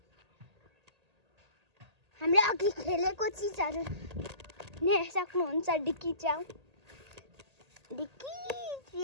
हामीले अघि खेलेको चिजहरू नै सक्नुहुन्छ डिक्की च्याउ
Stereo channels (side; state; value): left; late; 1.8 ms